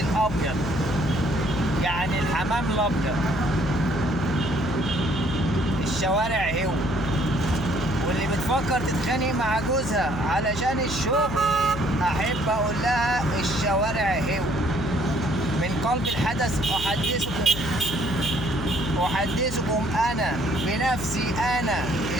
الأبيض، يعني الحمام الأبيض. الشوارع هو، واللي بتفكر تتخانق مع جوزها علشان الشغل، أحب أقول لها الشوارع هو. من قلب الحدث أحدثكم أنا بنفسي، أنا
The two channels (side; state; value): left; noise; hum, 9 dB below the sound